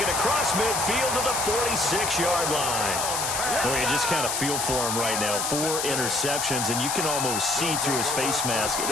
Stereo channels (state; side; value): noise; left; hiss, 1 dB below the sound